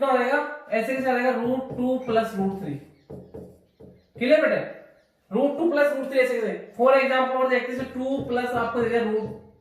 हो जाएगा, ऐसे कैसे आएगा, रूट 2 प्लस रूट 3। क्लियर बेटे, रूट 2 प्लस रूट 3 ऐसे कैसे। फॉर एग्जांपल और देखते हैं 2 प्लस आपको देगा रूट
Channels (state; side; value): identical; both; correlation 1.00